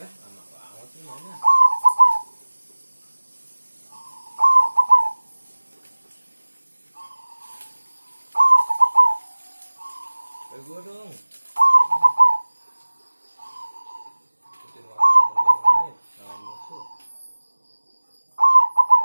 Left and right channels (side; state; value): both; inverted; correlation -1.00